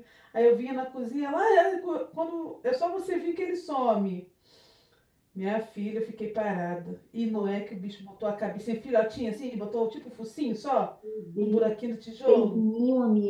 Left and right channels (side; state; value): both; identical; correlation 1.00